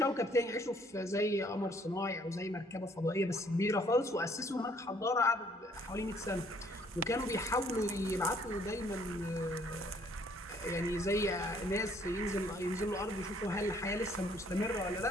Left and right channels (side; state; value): both; normal; correlation 0.63